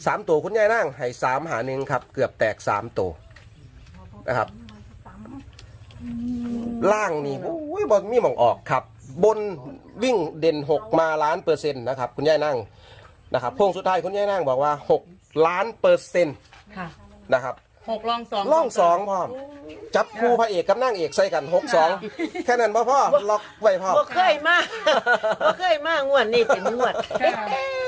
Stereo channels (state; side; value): identical; both; correlation 1.00